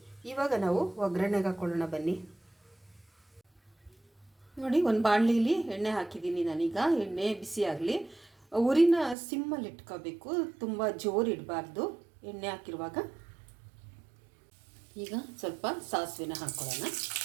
ಇವಾಗ ನಾವು ಒಗ್ಗರಣೆಗೆ ಹಾಕ್ಕೊಳ್ಳೋಣ ಬನ್ನಿ. ನೋಡಿ, ಒಂದು ಬಾಣಲಿಲಿ ಎಣ್ಣೆ ಹಾಕಿದ್ದೀನಿ ನಾನೀಗ. ಎಣ್ಣೆ ಬಿಸಿ ಆಗಲಿ. ಉರಿನ ಸಿಮ್ಮಲ್ಲಿ ಇಟ್ಕೋಬೇಕು, ತುಂಬ ಜೋರು ಇಡಬಾರ್ದು ಎಣ್ಣೆ ಹಾಕಿರುವಾಗ. ಈಗ ಸ್ವಲ್ಪ ಸಾಸಿವೆನ ಹಾಕ್ಕೊಳ್ಳೋಣ.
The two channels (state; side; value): drops out; left; at 9.2 s